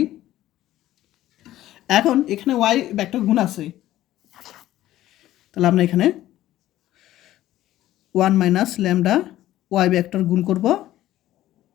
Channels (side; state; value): right; quieter; 14.3 dB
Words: এখন এখানে ওয়াই ভেক্টর গুণ আছে, তাহলে আমরা এখানে 1 মাইনাস ল্যামডা ওয়াই ভেক্টর গুণ করব,